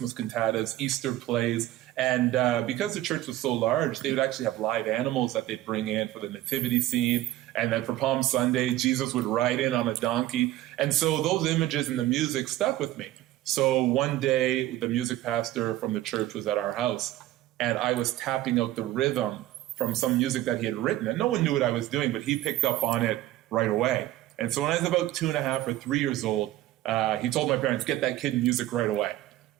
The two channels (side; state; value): left; quieter; 14.9 dB